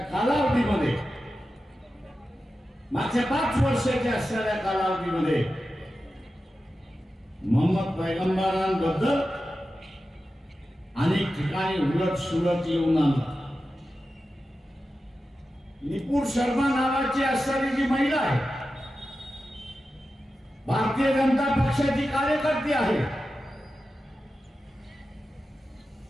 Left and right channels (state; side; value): normal; both; correlation 0.92